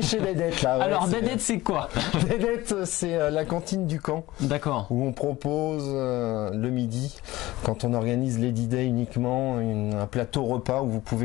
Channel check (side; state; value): right; quieter; 18.0 dB